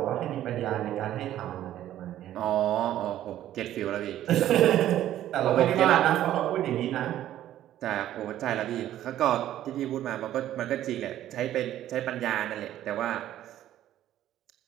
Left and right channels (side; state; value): left; quieter; 12.5 dB